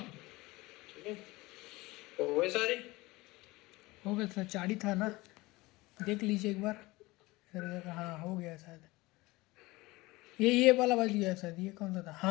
ठीक है, तो वो सारे हो गया सर, 4 ही था ना, देख लीजिए एक बार। हाँ हो गया शायद। ये वाला बच गया शायद, ये कौन सा था,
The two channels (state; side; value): quieter; right; 21.2 dB